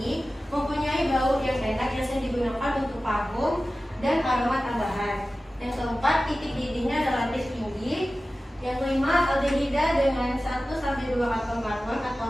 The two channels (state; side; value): normal; both; correlation 0.95